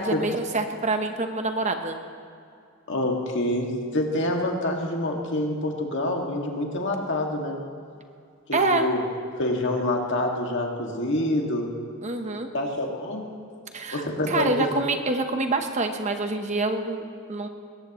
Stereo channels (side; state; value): both; normal; correlation 0.09